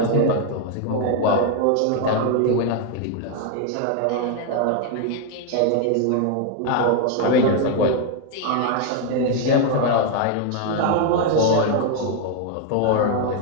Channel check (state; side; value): different; both; correlation 0.01